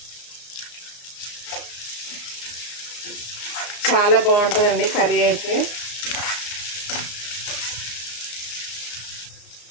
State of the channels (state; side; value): late; right; 34 ms